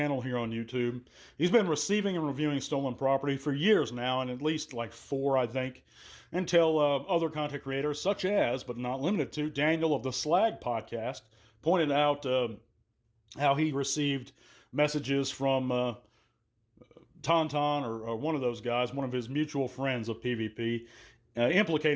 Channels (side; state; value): both; identical; correlation 1.00